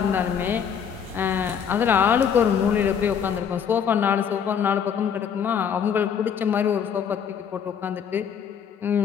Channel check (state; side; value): quieter; right; 7.6 dB